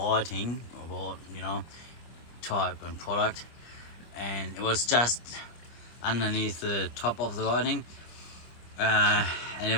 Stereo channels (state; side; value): late; right; 25 ms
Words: about, type and product, and it was just underneath the top of the writing, and